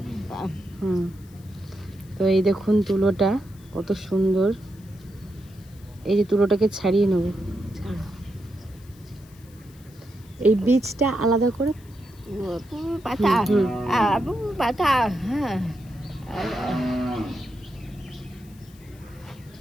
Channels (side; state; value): left; noise; hiss, 27 dB below the sound